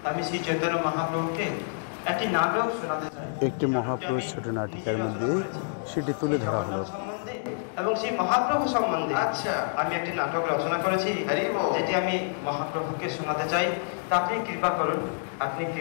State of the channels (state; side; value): silent; right; digital silence